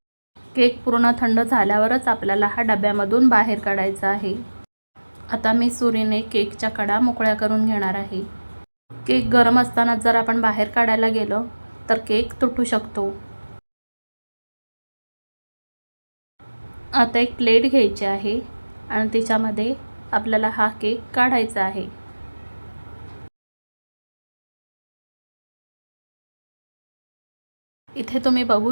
केक पूर्ण थंड झाल्यावरच आपल्याला हा डब्यामधून बाहेर काढायचा आहे. आता मी सुरीने केकच्या कडा मोकळ्या करून घेणार आहे. केक गरम असताना जर आपण बाहेर काढायला गेलो तर केक तुटू शकतो. आता एक प्लेट घ्यायची आहे आणि त्याच्यामध्ये आपल्याला हा केक काढायचा आहे. इथे तुम्ही बघू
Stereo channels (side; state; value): both; inverted; correlation -1.00